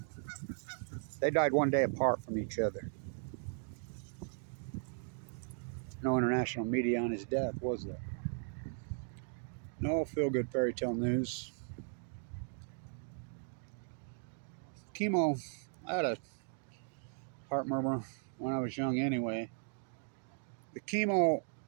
They died one day apart from each other. No international media on his death, was there? No feel-good fairy tale news. Chemo, I had a heart murmur when I was young anyway. The chemo,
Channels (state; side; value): silent; left; 53 dB below the other